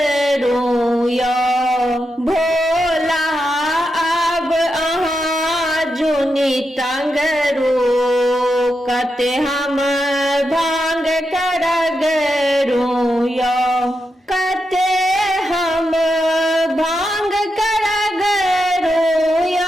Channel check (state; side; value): normal; both; correlation 0.86